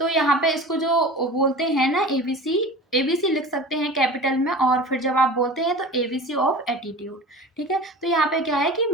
यहाँ पे इसको जो बोलते हैं ना एबीसी, एबीसी लिख सकते हैं कैपिटल में, और फिर जब आप बोलते हैं तो एबीसी ऑफ एटीट्यूड। ठीक है। तो यहाँ पे क्या है कि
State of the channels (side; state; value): both; normal; correlation 0.36